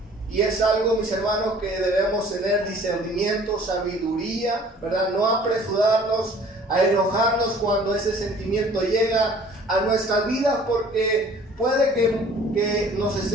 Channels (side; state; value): both; normal; correlation 0.51